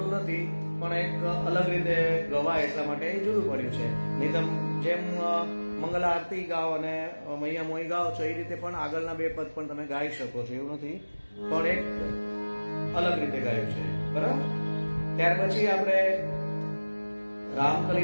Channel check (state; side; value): inverted; both; correlation -1.00